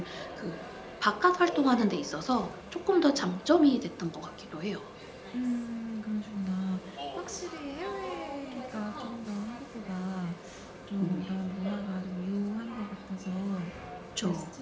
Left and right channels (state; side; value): identical; both; correlation 1.00